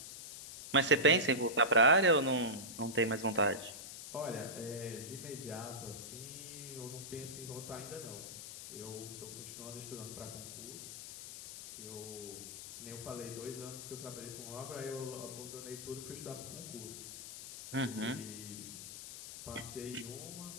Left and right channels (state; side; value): noise; left; hiss, 10 dB below the sound